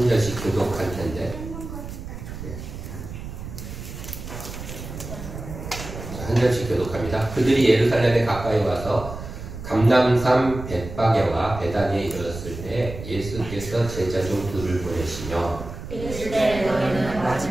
절씩 교독할 텐데. 한 절씩 교독합니다. 그들이 예루살렘에 가까이 와서 감람산 벳바게와 베다니에 이르렀을 때 예수께서 제자 중 둘을 보내시며 이르시되 너희는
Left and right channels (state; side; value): noise; right; rumble, 10 dB below the sound